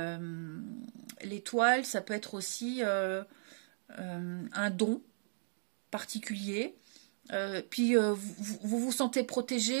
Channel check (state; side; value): silent; left; digital silence